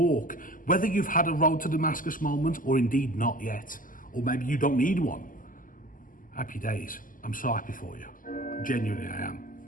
whether you've had a road to Damascus moment or indeed not yet, or maybe you don't need one, happy days. I'm so happy for you. Genuinely I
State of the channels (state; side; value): late; right; 0.39 ms